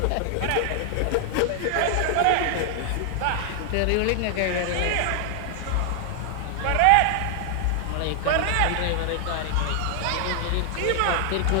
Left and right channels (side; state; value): both; different; correlation 0.00